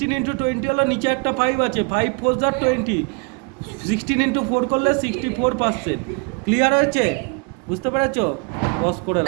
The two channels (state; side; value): quieter; left; 32.3 dB